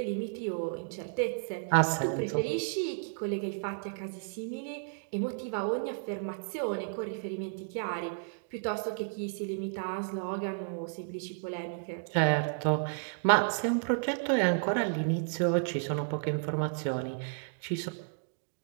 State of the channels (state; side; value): silent; left; digital silence